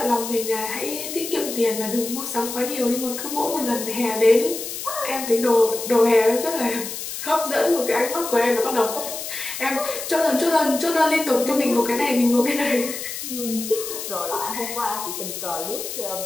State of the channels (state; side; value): noise; left; hiss, 7 dB below the sound